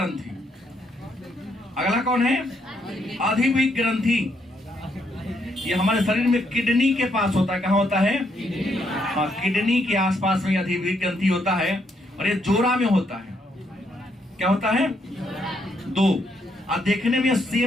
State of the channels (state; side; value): normal; both; correlation 0.74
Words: अगला कौन है? अधिवृक्क ग्रंथि। ये हमारे शरीर में किडनी के पास होता है। कहाँ होता है? हाँ, किडनी के आसपास में अधिवृक्क ग्रंथि होता है। और ये जोड़ा में होता है। क्या होता है? दो। और देखने में